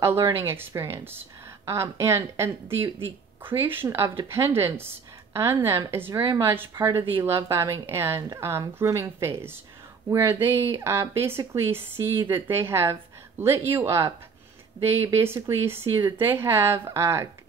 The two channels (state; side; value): quieter; left; 5.5 dB